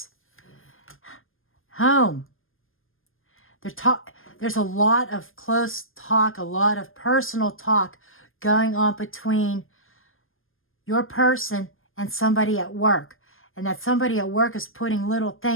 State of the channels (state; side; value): late; right; 0.60 ms